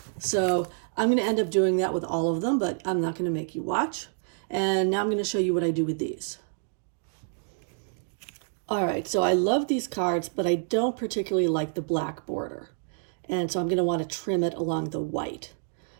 So I'm going to end up doing that with all of them, but I'm not going to make you watch. And now I'm going to show you what I do with these. All right, so I love these cards, but I don't particularly like the black border. And so I'm going to want to trim it along the white.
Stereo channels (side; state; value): left; silent; digital silence